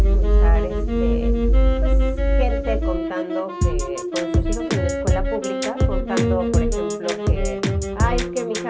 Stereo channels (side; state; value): both; identical; correlation 1.00